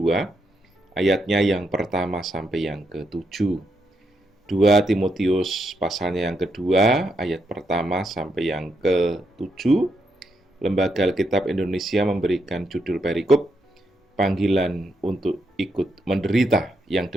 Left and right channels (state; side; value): normal; both; correlation 0.80